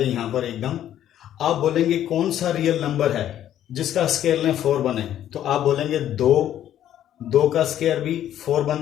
यहां पर एकदम आप बोलेंगे कौन सा रियल नंबर है जिसका स्क्वायर लें 4 बने, तो आप बोलेंगे 2 का स्क्वायर भी 4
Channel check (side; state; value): right; quieter; 11.4 dB